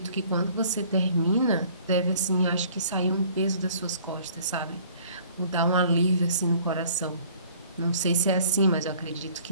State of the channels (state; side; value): inverted; both; correlation -0.54